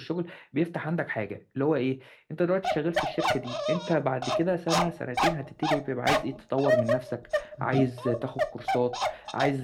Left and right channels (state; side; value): identical; both; correlation 1.00